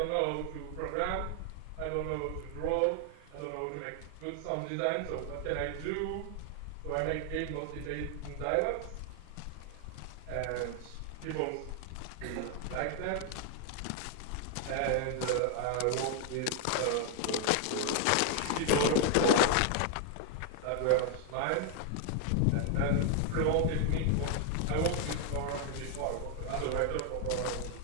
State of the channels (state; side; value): different; both; correlation 0.00